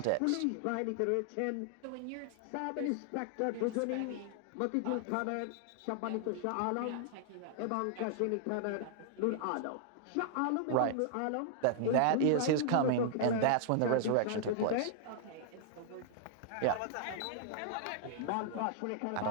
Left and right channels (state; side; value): different; both; correlation -0.01